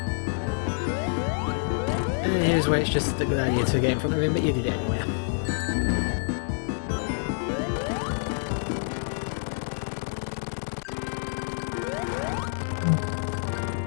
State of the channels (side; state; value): right; silent; digital silence